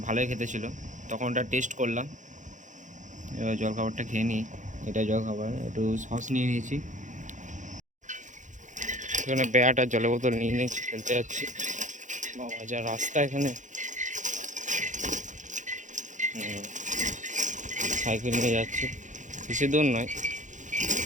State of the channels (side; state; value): left; late; 0.36 ms